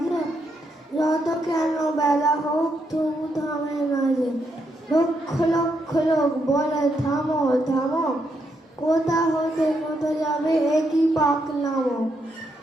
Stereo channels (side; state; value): both; normal; correlation 0.79